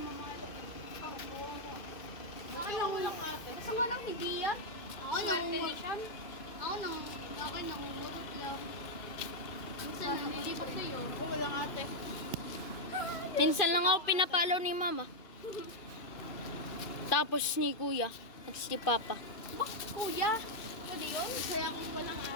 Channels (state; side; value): late; right; 2.5 ms